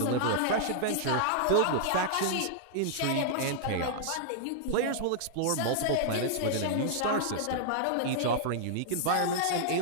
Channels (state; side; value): different; both; correlation -0.01